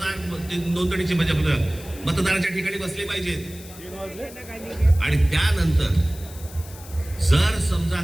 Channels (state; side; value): noise; left; hiss, 18 dB below the sound